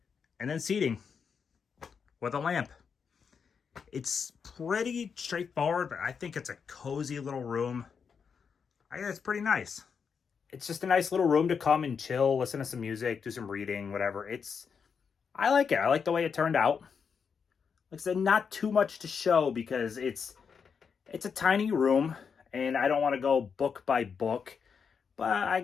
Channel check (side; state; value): right; quieter; 6.3 dB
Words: And then seating with a lamp. It's pretty straightforward, but I think it's a cozy little room. I think it's pretty nice. It's just a nice little room to come and chill, listen to some music, do some reading, whatever. I like it. I like the way it turned out. Like I said, not too much to show because it's a tiny room, and I don't want to go book by book, but I